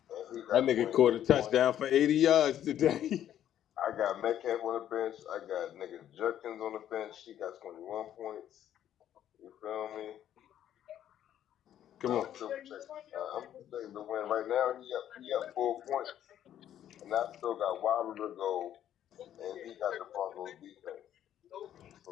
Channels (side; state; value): right; quieter; 10.9 dB